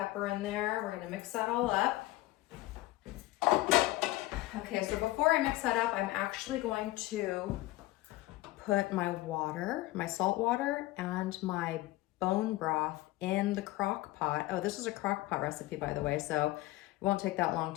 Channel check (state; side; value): quieter; right; 18.0 dB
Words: in there. We're gonna mix that all up. Okay, so before I mix that up, I'm actually going to put my water, my salt water, and my bone broth in the crock pot. Oh, this is a crock pot recipe, by the way, so it won't take that long